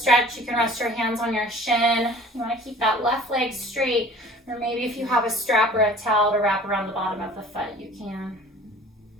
you can rest your hands on your shin. You want to keep that left leg straight, or maybe if you have a strap or a towel to wrap around the bottom of the foot, you can.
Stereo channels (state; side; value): normal; both; correlation 0.47